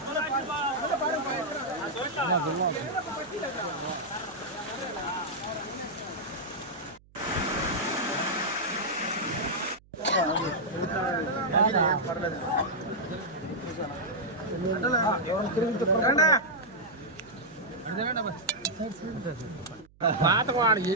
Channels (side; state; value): right; noise; hum, 27 dB below the sound